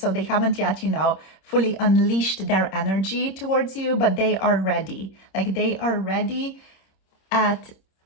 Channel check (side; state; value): right; late; 26 ms